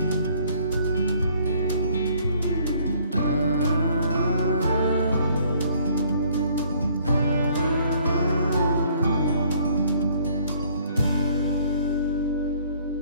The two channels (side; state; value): both; inverted; correlation -0.61